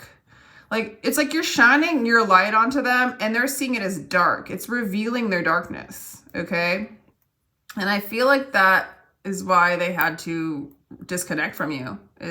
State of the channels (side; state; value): both; identical; correlation 1.00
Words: Like, it's like you're shining your light onto them and they're seeing it as dark. It's revealing their darkness, okay? And I feel like that is why they had to disconnect from you,